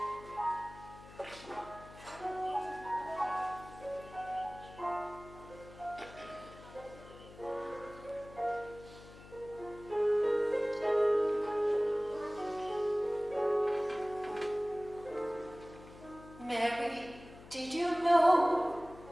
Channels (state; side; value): noise; left; hum, 18 dB below the sound